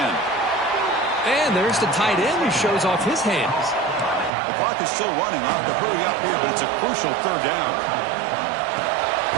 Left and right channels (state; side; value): drops out; left; at 4.3 s